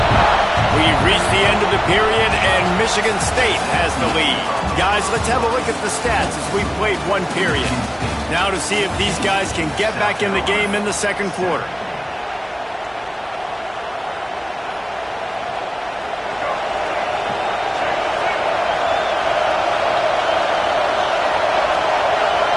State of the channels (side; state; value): both; identical; correlation 1.00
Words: We've reached the end of the period, and Michigan State has the lead. Guys, let's have a look at the stats as we played one period. Now to see if these guys can get back in the game in the second quarter.